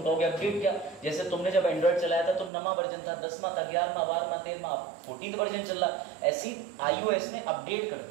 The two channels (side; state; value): left; drops out; at 2.5 s